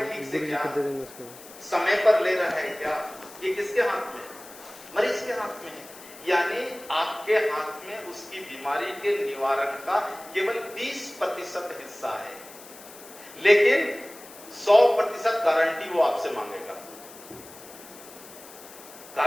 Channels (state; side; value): noise; left; hiss, 18 dB below the sound